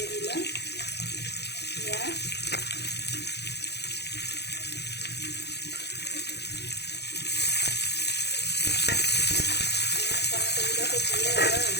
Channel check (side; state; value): right; late; 0.49 ms